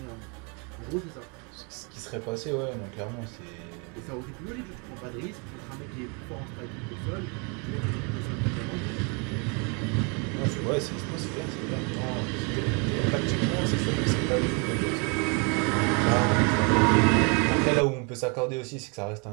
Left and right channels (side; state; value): left; quieter; 33.9 dB